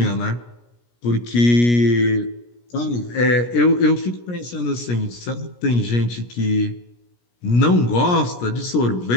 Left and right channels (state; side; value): late; right; 17 ms